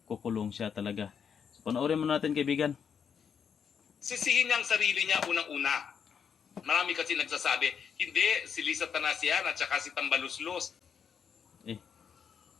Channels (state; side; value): quieter; right; 7.2 dB